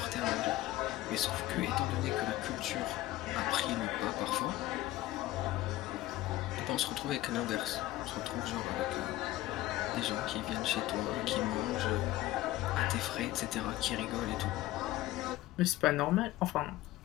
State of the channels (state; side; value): quieter; right; 16.2 dB